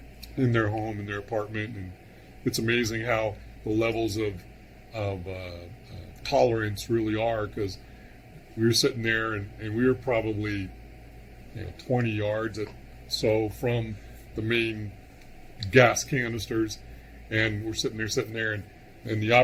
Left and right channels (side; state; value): both; identical; correlation 1.00